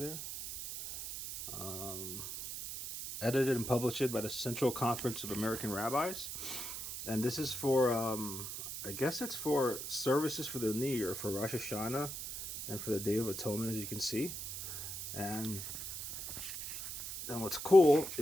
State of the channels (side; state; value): right; noise; hiss, 7 dB below the sound